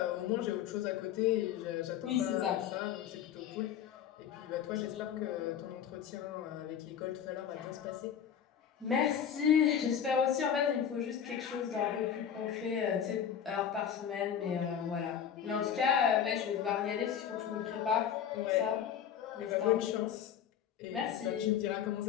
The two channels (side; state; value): right; quieter; 8.8 dB